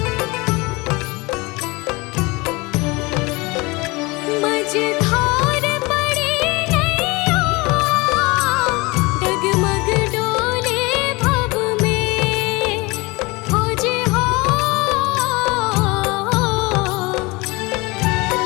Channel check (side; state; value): right; quieter; 24.6 dB